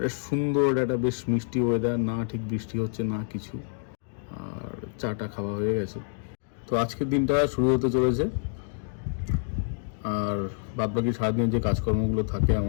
সুন্দর একটা বেশ মিষ্টি ওয়েদার, না ঠিক বৃষ্টি হচ্ছে না কিছু, আর চাটা খাওয়া হয়ে গেছে। তো আজকের দিনটা শুরু হতে চলেছে, আর বাদবাকি সারাদিন যে কাজকর্মগুলো থাকে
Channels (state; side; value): silent; right; 60 dB below the other